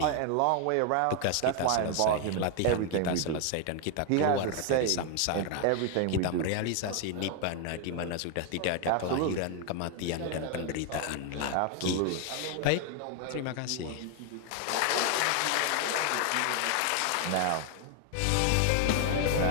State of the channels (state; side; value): different; both; correlation 0.01